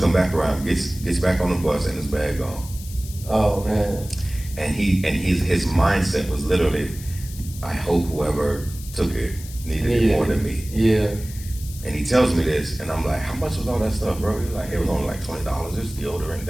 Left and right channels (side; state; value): left; noise; hiss, 16 dB below the sound